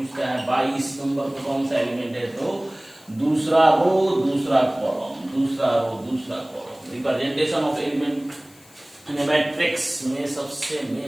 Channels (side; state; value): left; noise; hiss, 26 dB below the sound